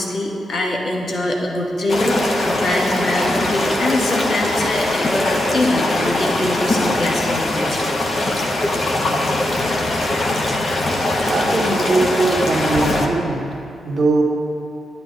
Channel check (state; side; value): normal; both; correlation 0.84